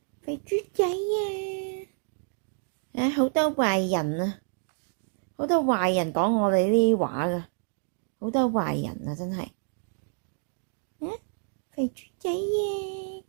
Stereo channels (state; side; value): silent; left; digital silence